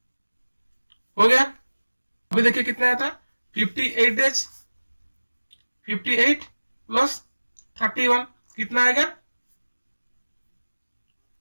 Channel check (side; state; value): both; inverted; correlation -1.00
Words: हो गया। अभी देखिए कितना आया था 58 डेज, 58 प्लस 31 कितना आएगा